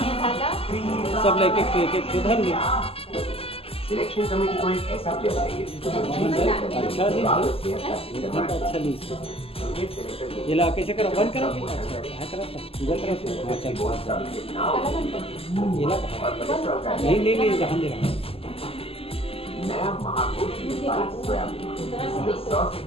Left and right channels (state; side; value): late; right; 0.28 ms